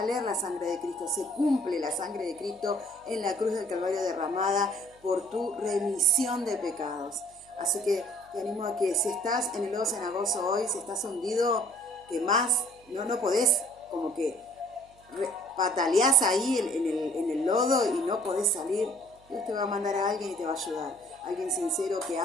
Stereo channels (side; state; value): right; noise; hum, 29 dB below the sound